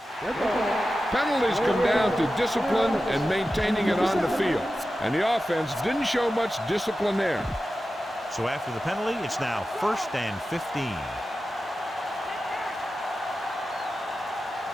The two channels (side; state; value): both; normal; correlation 0.93